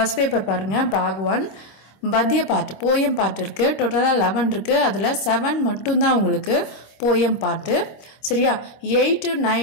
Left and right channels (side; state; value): right; late; 26 ms